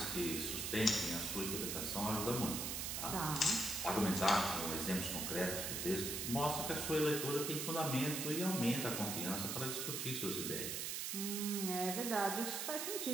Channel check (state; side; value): noise; right; hiss, 2 dB below the sound